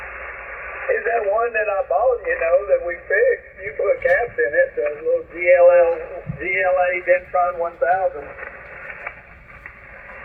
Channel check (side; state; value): both; identical; correlation 1.00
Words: Is that one that I bought, you know, that we fixed? You put caps in it, the little GLA Dentron 1000.